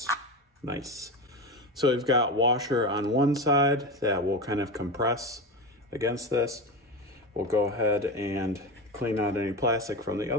So we've got washer on one side that will kind of compress against this. We'll go ahead and clean out any plastic from the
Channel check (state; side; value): normal; both; correlation 0.21